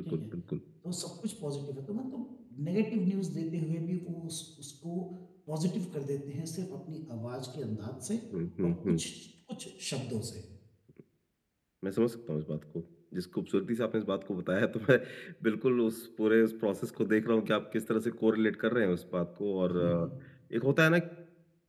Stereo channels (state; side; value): identical; both; correlation 1.00